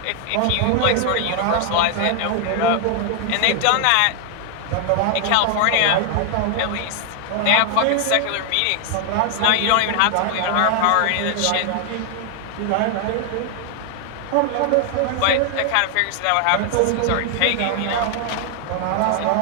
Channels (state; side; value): different; both; correlation 0.00